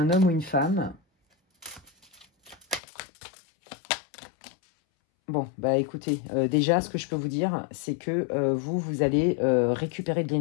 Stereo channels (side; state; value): right; drops out; at 2.8 s